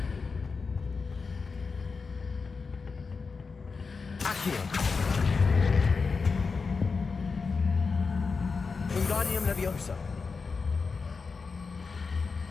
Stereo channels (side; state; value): right; quieter; 4.8 dB